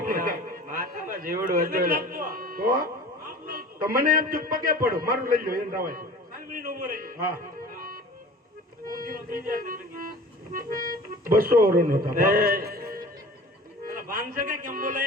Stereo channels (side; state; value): both; normal; correlation 0.41